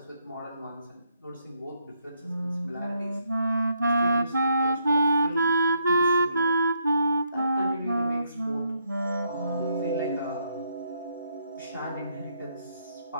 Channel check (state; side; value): inverted; both; correlation -0.75